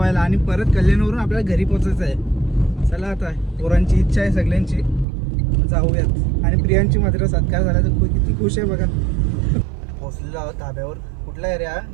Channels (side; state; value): left; drops out; at 5.1 s